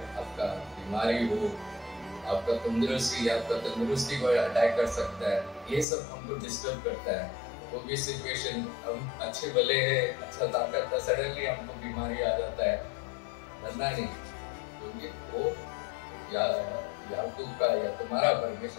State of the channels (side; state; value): right; drops out; at 5.9 s